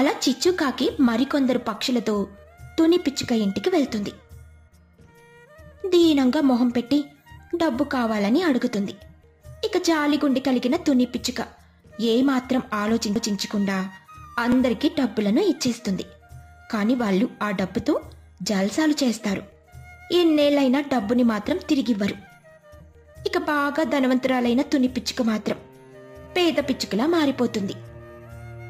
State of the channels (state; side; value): identical; both; correlation 1.00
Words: చిచ్చుకాకి మరికొందరు పక్షులతో తుని పిచ్చుక ఇంటికి వెళ్తుంది. దీనంగా మొహం పెట్టి డబ్బు కావాలని అడుగుతుంది. ఇక జాలిగుండి కలిగిన తుని పిచ్చుక ఏమాత్రం ఆలోచించకుండా అందరికీ డబ్బులను ఇచ్చేస్తుంది. కాని వాళ్ళు ఆ డబ్బుతో జల్సాలు చేస్తారు. ఎన్నేళ్లైనా డబ్బుని మాత్రం తిరిగివ్వరు. ఇక బాగా ధనవంతురాలైన తుని పిచ్చుక మాత్రం పేద పిచ్చుకలా మారిపోతుంది.